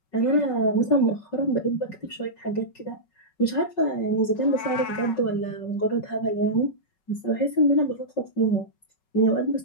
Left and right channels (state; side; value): late; right; 5.4 ms